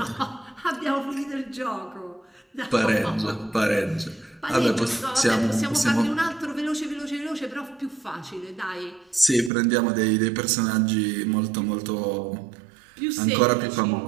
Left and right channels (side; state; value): left; drops out; at 9.5 s